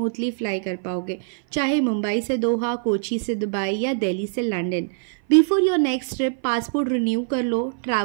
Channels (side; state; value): left; silent; 57 dB below the other